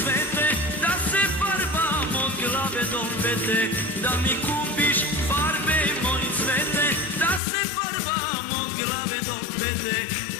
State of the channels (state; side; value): drops out; right; at 7.4 s